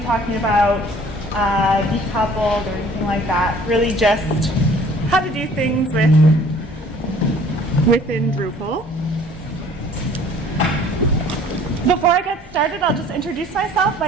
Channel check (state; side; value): normal; both; correlation 0.53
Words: talking about decoupled or anything like that, really just how to do things within Drupal. Before I get started, I'll just introduce myself.